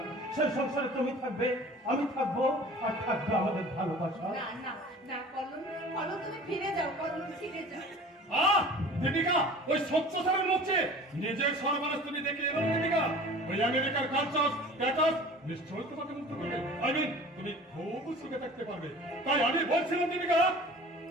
সেই সংসারে তুমি থাকবে, আমি থাকবো, আর থাকবে আমাদের ভালোবাসা। না না না কল্লোল, কল্লোল তুমি ফিরে যাও, কল্লোল ফিরে যাও। দীপিকা, ওই 70 সালের মধ্যে নিজের সর্বনাশ তুমি দেখে এলো দীপিকা। ওই আমেরিকার কালচার স্ট্যাটাস নিশ্চয়ই তোমাকে মুক্ত করবে। তুমি খুব সুখে থাকতে পারবে। তাই আমি বলছিলাম দীপিকা,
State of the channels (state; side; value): normal; both; correlation 0.43